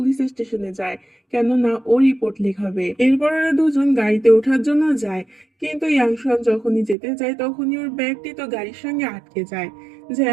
স্টেশনে যায়, কেননা ও রিপোর্ট লেখাবে। এরপর ওরা দুজন গাড়িতে ওঠার জন্য যায়, কিন্তু ইয়াংশন যখনই যেতে যায় তখনই ওর ব্যাগটি তো গাড়ির সঙ্গে আটকে যায়।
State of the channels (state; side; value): drops out; left; at 7.0 s